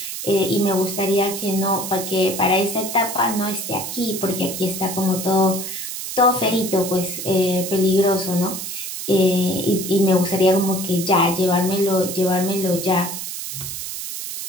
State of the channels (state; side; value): noise; right; hiss, 6 dB below the sound